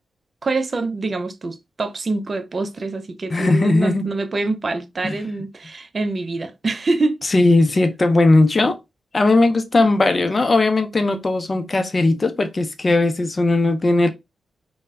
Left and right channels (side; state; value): both; normal; correlation 0.93